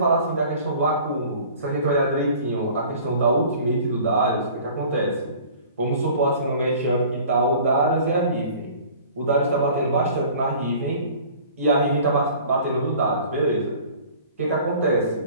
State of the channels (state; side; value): inverted; both; correlation -0.47